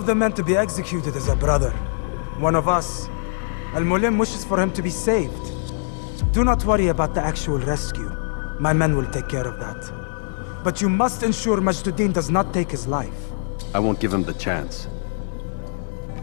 the men to be executed is a brother. One of us. Al-Mualim wishes for him to be saved. Do not worry about the actual rescue. My men will take care of that. But you must ensure Mejduddin does not take his life. I won't give him the chance.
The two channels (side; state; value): right; silent; 56 dB below the other